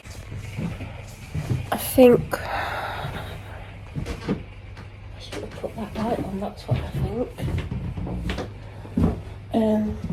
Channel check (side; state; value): both; identical; correlation 1.00